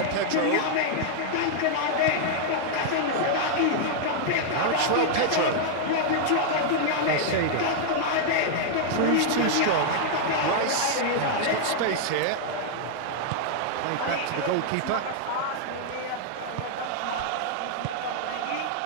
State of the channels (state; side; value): different; both; correlation -0.01